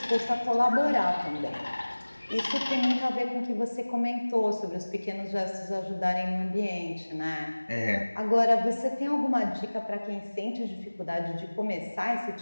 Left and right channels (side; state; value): both; inverted; correlation -1.00